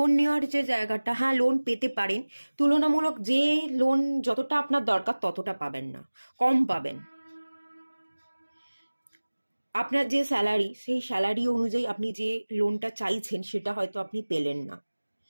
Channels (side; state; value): both; inverted; correlation -1.00